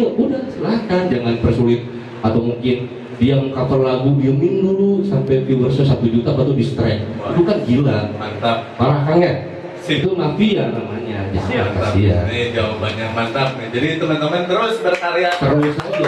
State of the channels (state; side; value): identical; both; correlation 1.00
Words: silahkan, jangan persulit. Atau mungkin dia mengcover lagu diemin dulu sampai viewersnya 1 juta baru di strike. Itu kan gila, Mantap. parah kan ya? Sip. Itu mafia namanya. Jangan Mantap. kasihan. Ini jawabannya mantap nih. Jadi teman-teman terus berkarya. Terus